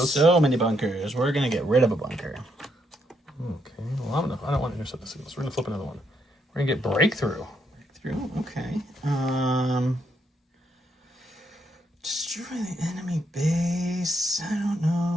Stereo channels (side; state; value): both; normal; correlation 0.76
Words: So many bunkers. We're going to get rid of a bunker. Okay. Well, I don't want to intercept the signals. We're going to flip another one. We're going to get Breakthrough. Okay. Destroy the enemy base. I don't